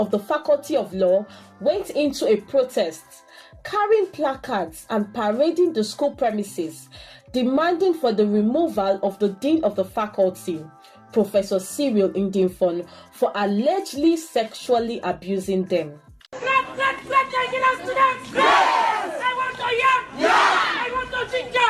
the Faculty of Law went into a protest, carrying placards and parading the school premises, demanding for the removal of the Dean of the Faculty, Professor Ndifon, for allegedly sexually abusing them. Let Nigerian students! Yes! I want to yam! Yeah! I want to ginger!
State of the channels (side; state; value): both; identical; correlation 1.00